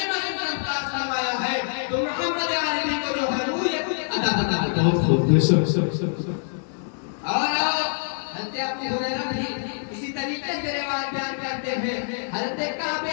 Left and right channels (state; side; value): silent; right; 62 dB below the other